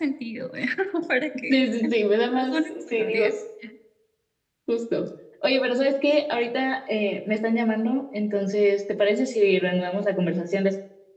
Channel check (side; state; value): both; identical; correlation 1.00